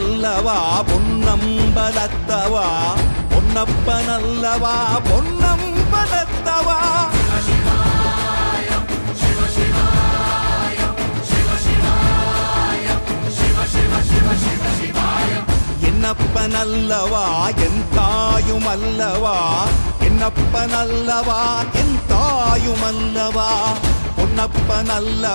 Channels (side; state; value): both; inverted; correlation -1.00